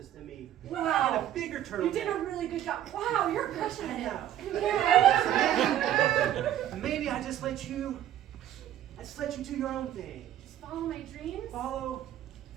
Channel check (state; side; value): quieter; left; 11.8 dB